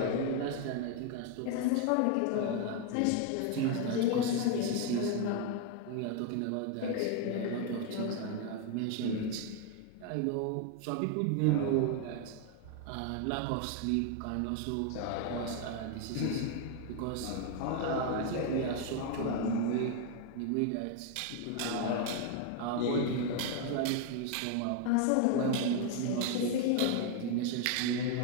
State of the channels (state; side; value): different; both; correlation 0.01